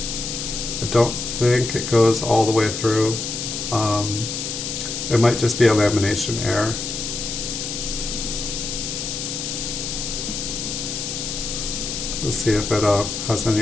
I don't think it goes all the way through. It might just be a lamination error. Let's see if it has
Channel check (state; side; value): noise; left; hiss, 4 dB below the sound